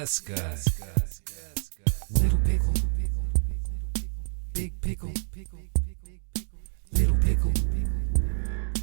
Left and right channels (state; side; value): silent; left; 59 dB below the other